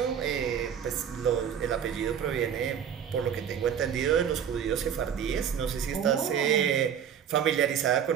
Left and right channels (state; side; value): quieter; left; 8.4 dB